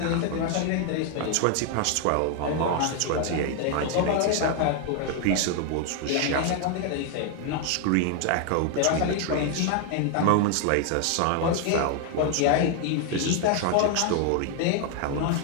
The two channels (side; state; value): both; different; correlation 0.01